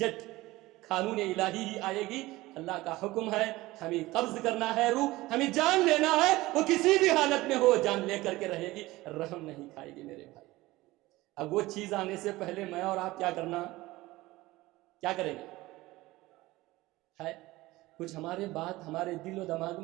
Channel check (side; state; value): left; quieter; 19.0 dB